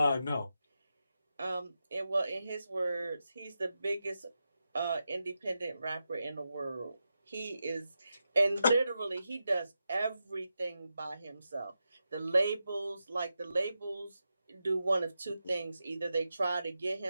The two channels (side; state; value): both; inverted; correlation -0.89